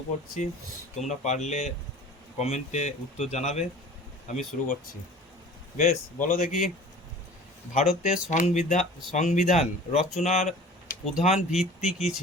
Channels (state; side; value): normal; both; correlation 0.43